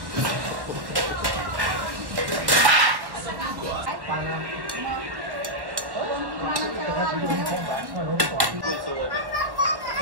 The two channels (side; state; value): left; late; 1.1 ms